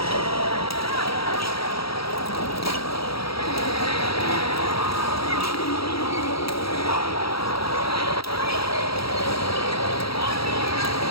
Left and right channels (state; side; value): late; right; 0.75 ms